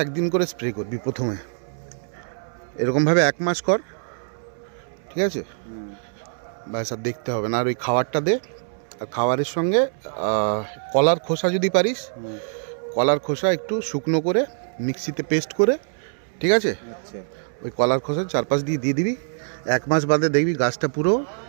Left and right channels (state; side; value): silent; left; 63 dB below the other